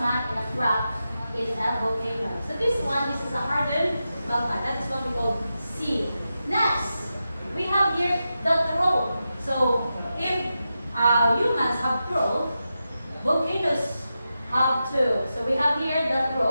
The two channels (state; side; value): inverted; both; correlation -0.90